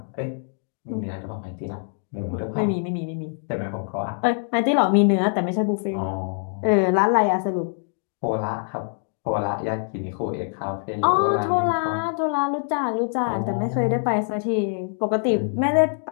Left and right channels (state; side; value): silent; right; 62 dB below the other